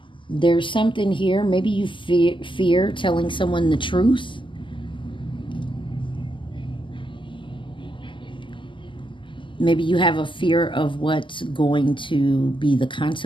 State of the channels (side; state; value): right; late; 0.24 ms